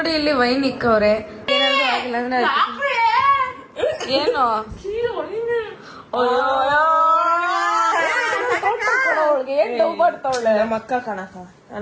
ಇಲ್ಲಿ ವೈನ್ ಇಕ್ಕವ್ರೆ. ಏನಾದ್ರು ಆಗಿಲ್ಲ ಅಂದ್ರೆ ಏನು ಅವಳಿಗೆ ಏನ್ ಡೌ ಮಾಡ್ತಾವಳೆ. ನಮ್ಮ ಅಕ್ಕ ಕಣಕ,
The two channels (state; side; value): identical; both; correlation 1.00